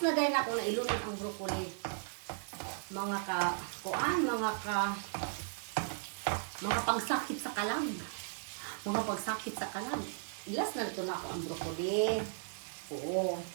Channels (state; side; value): silent; left; digital silence